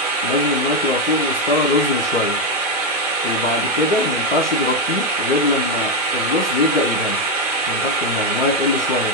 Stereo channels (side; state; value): both; normal; correlation 0.06